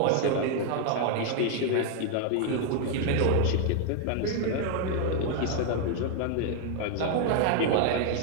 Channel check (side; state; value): both; different; correlation 0.00